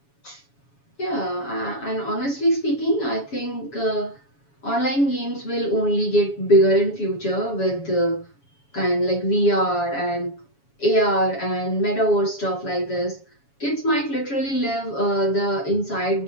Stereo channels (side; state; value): right; late; 7.2 ms